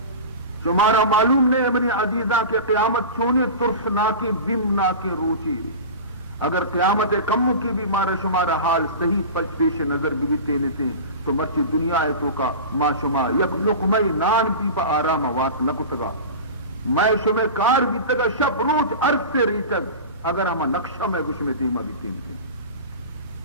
شمارا معلوم نہیں اپنی عزیزہ کے قیامت چونے طرف نہ کی بم نہ کی روچی، اگر قیامت کم کی بھی مارا شمارا حال صحیح پچ پیش نظر بھی تینے سے تو مرچی دنیا ہے تو کا ما شما یک لقمئی نان پی پا آرام وات نہ کتگا میں شمع کار بھی تگا شب روز عرض سے ریچگ اگر ہما نقشہ میں گش میں دیما بھی تین کے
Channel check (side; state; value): both; inverted; correlation -0.31